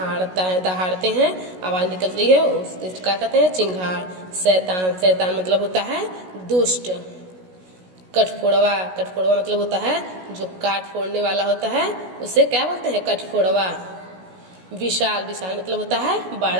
है, दहाड़ते हैं, आवाज निकल रही है, उसको क्या कहते हैं? चिंगार। शैतान, शैतान मतलब होता है दुष्ट। कठफोड़वा, कठफोड़वा मतलब होता है जो काट फोड़ने वाला होता है, उसे क्या बोलते हैं? कठफोड़वा। विशाल, विशाल मतलब होता है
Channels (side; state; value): left; late; 16 ms